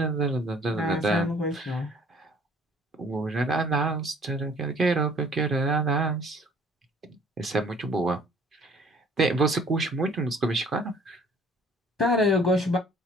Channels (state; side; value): normal; both; correlation 0.56